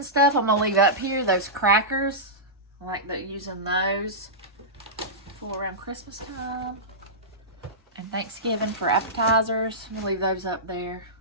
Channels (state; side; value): normal; both; correlation -0.15